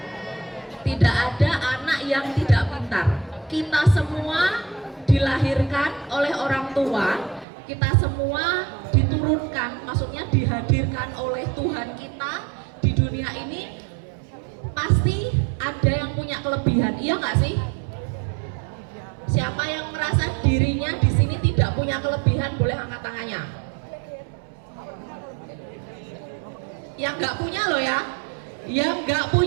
Tidak ada anak yang tidak pintar. Kita semua dilahirkan oleh orang tua, kita semua diturunkan, maksudnya dihadirkan oleh Tuhan kita di dunia ini. Pasti ada yang punya kelebihan, iya nggak sih? Siapa yang merasa dirinya di sini tidak punya kelebihan boleh angkat tangannya. Yang nggak punya loh ya, yang nggak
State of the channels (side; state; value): left; drops out; at 7.5 s